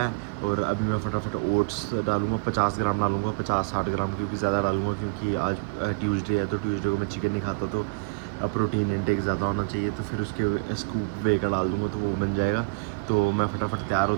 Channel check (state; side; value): quieter; left; 32.0 dB